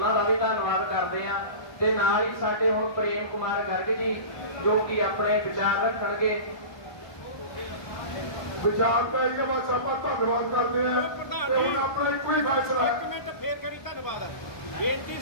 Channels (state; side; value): late; right; 1.2 ms